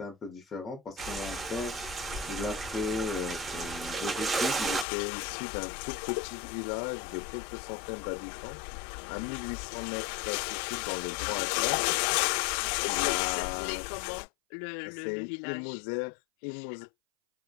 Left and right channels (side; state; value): right; drops out; at 4.9 s